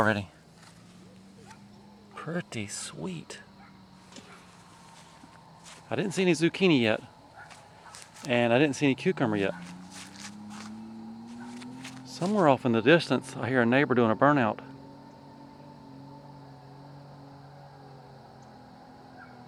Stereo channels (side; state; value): both; identical; correlation 1.00